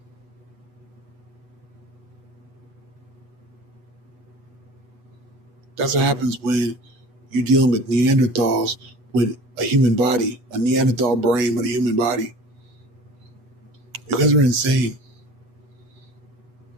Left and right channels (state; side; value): late; left; 8.2 ms